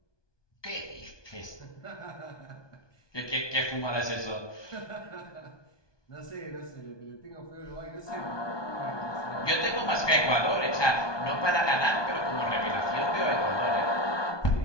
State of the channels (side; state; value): right; late; 1.2 ms